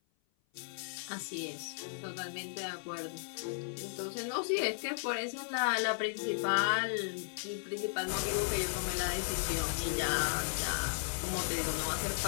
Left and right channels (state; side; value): silent; right; 54 dB below the other